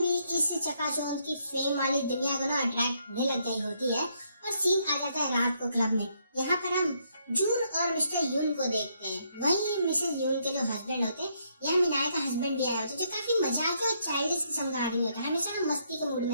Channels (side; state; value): both; inverted; correlation -0.74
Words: इस चकाचौंध की फेम वाली दुनिया को ना अट्रैक्ट होने लग गई होती है और सीन आ जाता है रात को क्लब में। यहाँ पर हम जून और मिस्टर यून को देखते हैं। वहीं मिसेस यून के जो हस्बैंड होते हैं, यहाँ मिनाई का हस्बैंड भी आया होता है, जो काफी मजाक और चाइल्डिश किस्म का आदमी होता है, हमेशा ना मस्ती के मूड